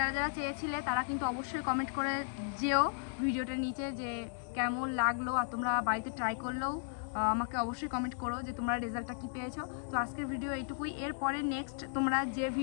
যারা চেয়েছিলে তারা কিন্তু অবশ্যই কমেন্ট করে যেও ভিডিওটার নিচে যে কেমন লাগলো, আর তোমরা বাড়িতে ট্রাই করলেও আমাকে অবশ্যই কমেন্ট করো যে তোমরা রেজাল্টটা কী পেয়েছো। তো আজকের ভিডিও এইটুকুই। এরপরে নেক্সট তোমরা যে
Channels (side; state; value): right; silent; digital silence